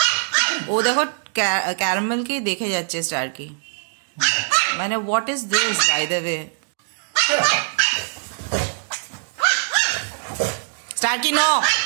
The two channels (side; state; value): left; silent; digital silence